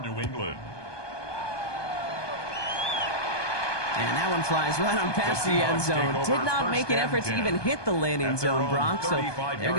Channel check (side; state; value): right; late; 1.2 ms